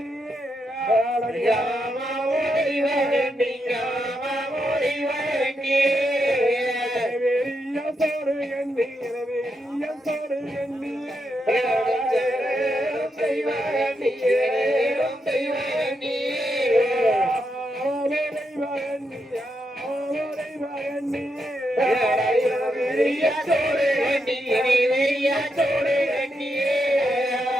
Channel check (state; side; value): normal; both; correlation 0.83